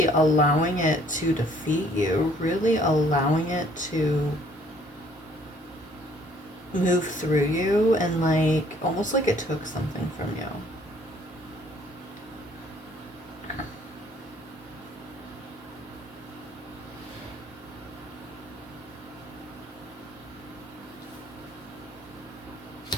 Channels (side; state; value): both; normal; correlation 0.60